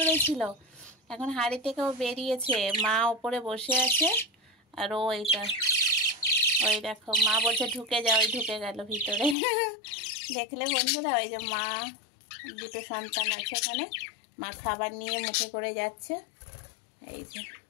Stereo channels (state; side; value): drops out; right; at 9.3 s